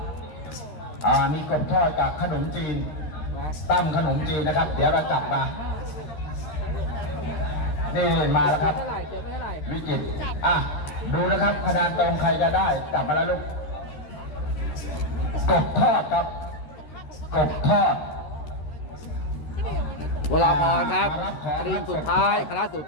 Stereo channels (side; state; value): right; late; 13 ms